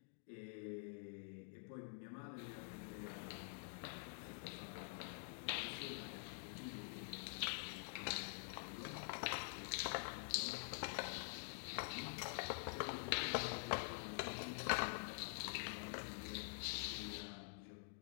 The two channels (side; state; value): right; silent; digital silence